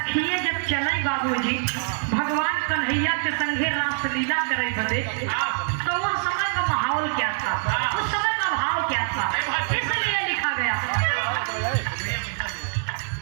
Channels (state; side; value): silent; left; digital silence